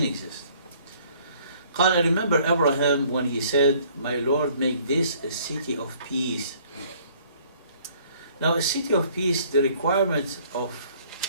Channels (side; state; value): both; inverted; correlation -0.59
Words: exist. قال, I remember Abraham when he said, my Lord, make this a city of peace. Now a city of peace, the requirement of